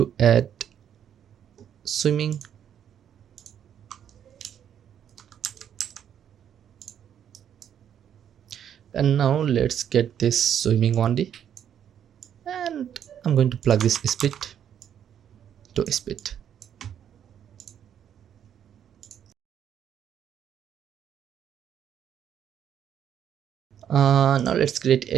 add swimming. And now let's get this swimming 1D, and I'm going to plug this speed to speed. Now let's create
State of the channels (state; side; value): quieter; left; 9.3 dB